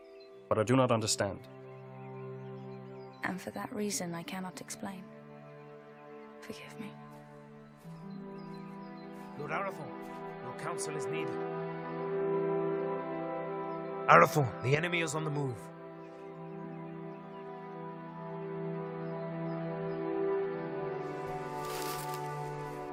But I do not understand. And for that reason, I cannot explain. Forgive me. Lord Arathorn, your counsel is needed. Arathorn, the enemy is on the move.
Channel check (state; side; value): identical; both; correlation 1.00